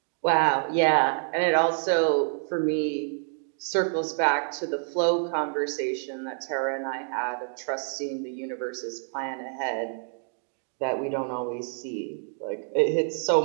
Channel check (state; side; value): silent; left; digital silence